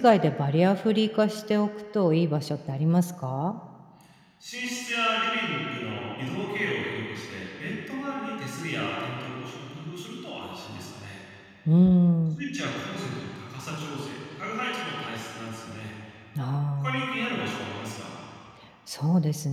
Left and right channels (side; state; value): both; identical; correlation 1.00